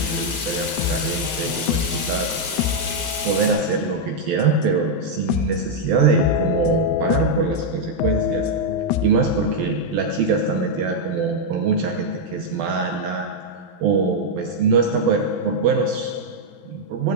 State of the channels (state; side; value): normal; both; correlation -0.02